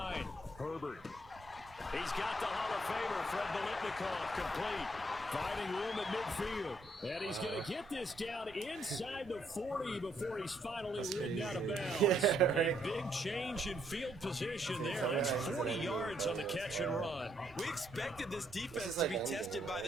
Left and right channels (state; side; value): normal; both; correlation 0.72